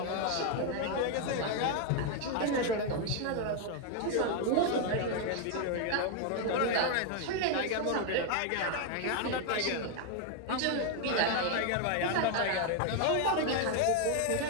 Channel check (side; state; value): both; different; correlation 0.01